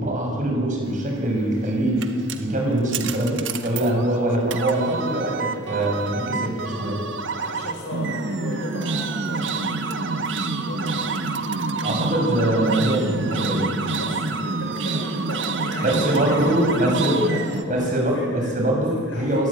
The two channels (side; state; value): both; normal; correlation 0.42